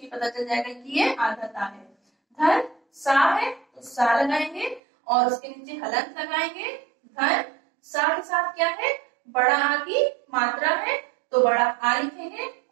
ये पता चल जाएगा कि ये आधा ता है। धन सा है तो सा लगाएंगे और उसके नीचे हलंत लगाएंगे। धन सा के साथ क्या है? बड़ा आ की मात्रा है तो बड़ा आ लिखेंगे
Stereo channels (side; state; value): left; drops out; at 4.8 s